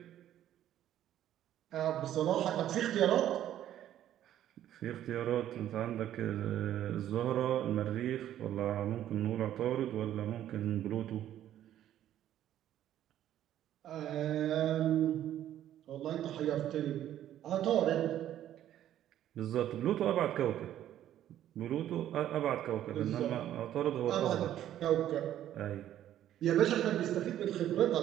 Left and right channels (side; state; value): left; quieter; 11.8 dB